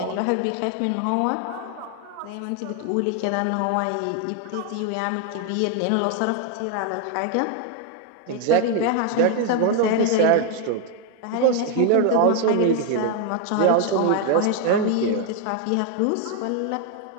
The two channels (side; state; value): both; different; correlation 0.00